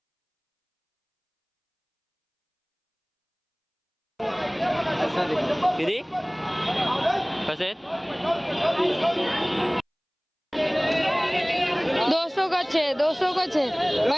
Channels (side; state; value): both; identical; correlation 1.00